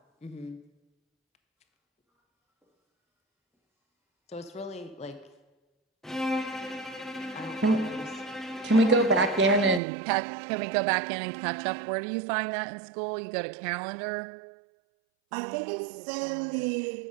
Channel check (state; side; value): drops out; left; at 9.8 s